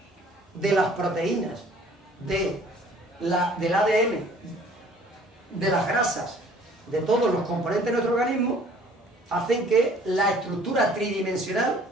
de las proteínas, del ADN, de las grasas, de todos los componentes de nuestro organismo, hacen que la estructura tridimensional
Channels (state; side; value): normal; both; correlation 0.54